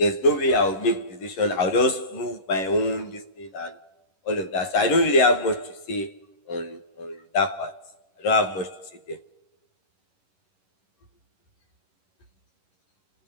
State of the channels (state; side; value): late; right; 11 ms